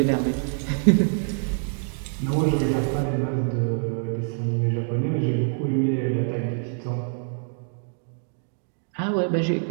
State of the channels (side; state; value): left; silent; 60 dB below the other